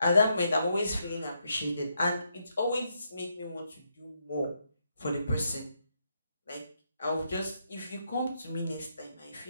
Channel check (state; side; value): inverted; both; correlation -0.79